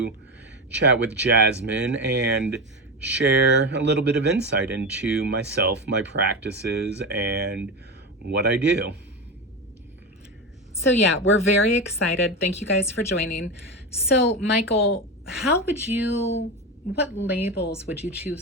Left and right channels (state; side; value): normal; both; correlation 0.18